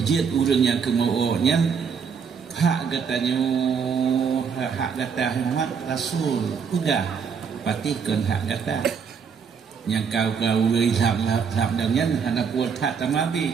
urang yang kemauannya hak katanya hak kata Muhammad Rasul udah patihkan hak kata yang kau lihat dan hana buat hak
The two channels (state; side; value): quieter; left; 6.4 dB